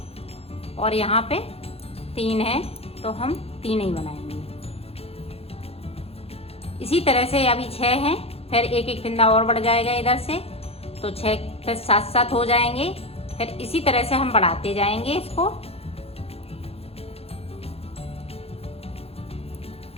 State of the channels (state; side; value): late; right; 0.29 ms